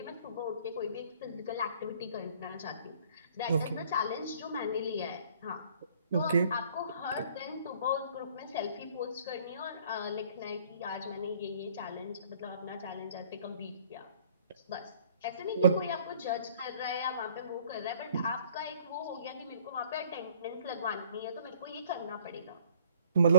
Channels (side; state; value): both; inverted; correlation -0.57